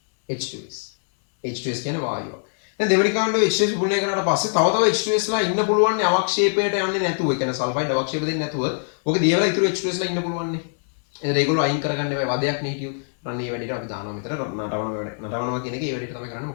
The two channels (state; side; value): silent; right; digital silence